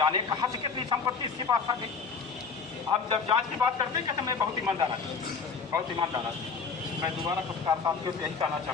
कहाँ से कितनी संपत्ति इसके पास आ गई। हम जब जांच की बात करते हैं कहते मैं बहुत ईमानदार आदमी, बहुत ईमानदार आदमी। मैं दोबारा पत्रकार साथियों से यही कहना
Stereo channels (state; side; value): quieter; right; 5.4 dB